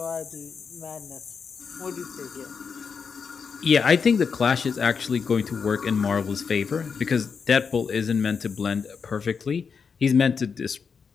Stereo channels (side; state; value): right; quieter; 5.8 dB